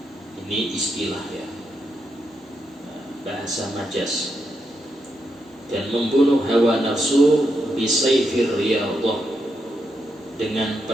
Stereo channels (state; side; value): normal; both; correlation 0.83